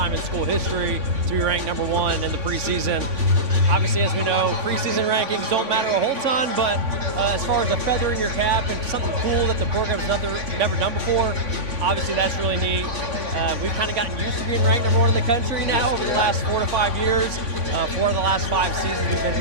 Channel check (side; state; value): left; late; 3.5 ms